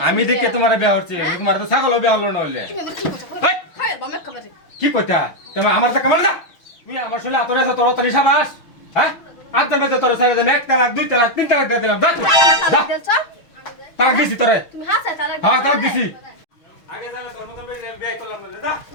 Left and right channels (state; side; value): late; right; 6.2 ms